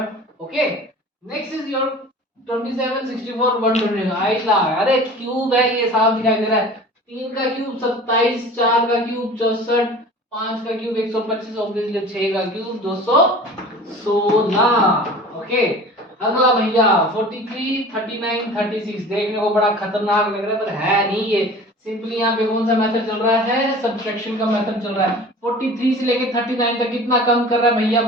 Okay, next is your 27, 64, 120। आइला, अरे क्यूब है ये, साफ दिखाई दे रहा है। 3 का क्यूब 27, 4 का क्यूब 64, 5 का क्यूब 125, ऑब्वियसली 6 का क्यूब 216। ओके, अगला भैया 43, 39, 36। देखने को बड़ा खतरनाक लग रहा है पर है नहीं ये। सिंपली यहाँ पे कौन सा मेथड चल रहा है? सब्ट्रैक्शन का मेथड चल रहा है। 43 से लेके 39 तक कितना कम कर रहा है भैया?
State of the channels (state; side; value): normal; both; correlation 0.41